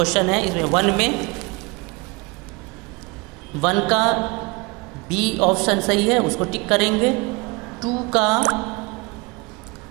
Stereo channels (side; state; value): left; quieter; 27.1 dB